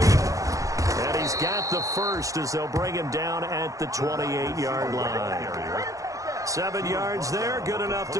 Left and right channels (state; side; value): late; left; 0.16 ms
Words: And he's got the first as they'll bring him down at the 28-yard line. 7 yards there, good enough